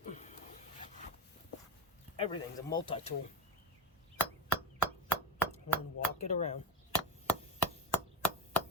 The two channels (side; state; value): both; normal; correlation 0.17